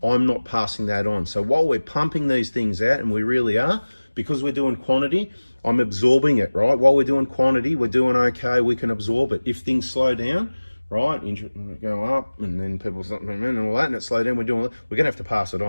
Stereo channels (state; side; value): inverted; both; correlation -1.00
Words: I'm not passing that on. So while we're pumping these things out, and we really are, because we're doing quantity, I'm absorbing it, right? While we're doing quantity, we're doing okay, we can absorb it. If things slow down, right? Go up, and then people start and all that, and it slow down. We're going to have to pass it